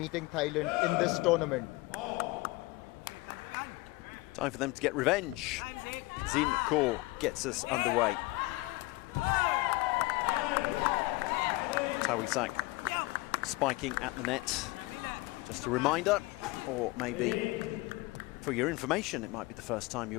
Thailand in this tournament. Time for them to get revenge. Zin Kaur gets us underway. Tawisak spiking at the net. Just a reminder, or maybe for your information, it might be the first time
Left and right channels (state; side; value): quieter; right; 22.3 dB